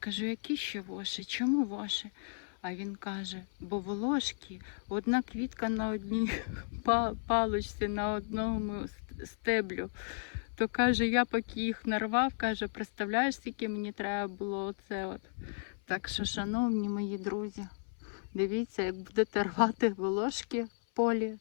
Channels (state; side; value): silent; right; 55 dB below the other